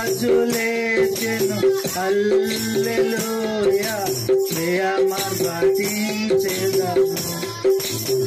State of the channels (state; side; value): identical; both; correlation 1.00